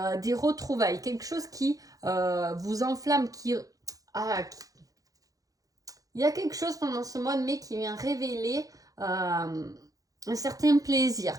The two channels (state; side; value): late; left; 0.17 ms